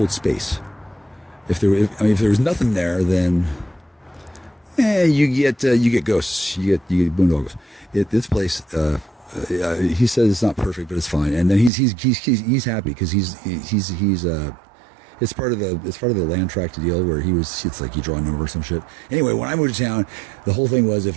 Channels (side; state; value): left; drops out; at 11.7 s